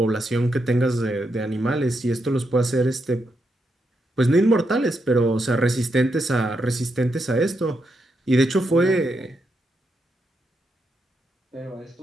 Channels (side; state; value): both; normal; correlation 0.82